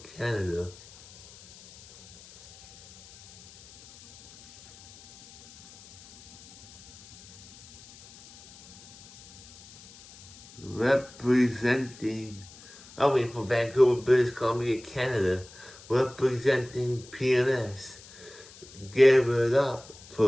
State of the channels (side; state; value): left; noise; hiss, 21 dB below the sound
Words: Canada, representing, from Vancouver, British Columbia, Canada, representing PNS. Give it up